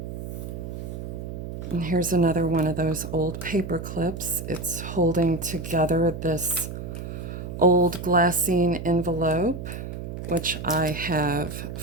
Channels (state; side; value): noise; right; hum, 8 dB below the sound